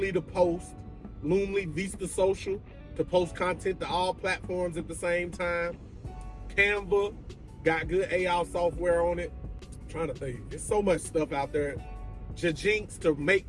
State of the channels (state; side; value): identical; both; correlation 1.00